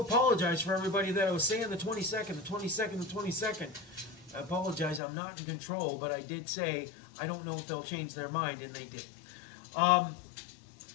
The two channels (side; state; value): right; drops out; at 5.0 s